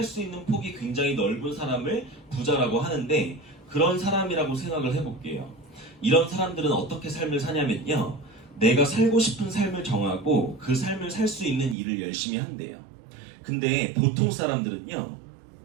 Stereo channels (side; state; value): left; drops out; at 11.8 s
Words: 수 있는 폭이 굉장히 넓은 사람을 부자라고 하는데, 그런 사람이라고 생각을 해볼게요. 이런 사람들은 어떻게 삶을 사냐면요, 내가 살고 싶은 삶을 정하고 그 삶을 살 수 있는 일을 열심히 한대요. 근데 보통 사람들은요,